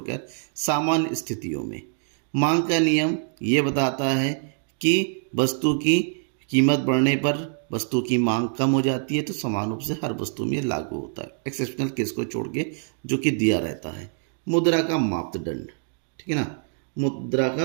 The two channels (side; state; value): left; silent; 59 dB below the other